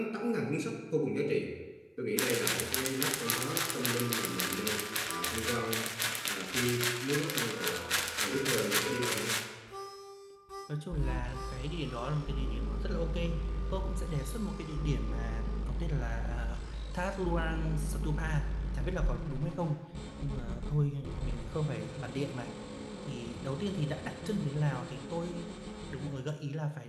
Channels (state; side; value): identical; both; correlation 1.00